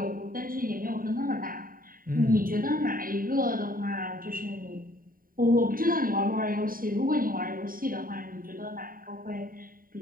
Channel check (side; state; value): left; late; 0.41 ms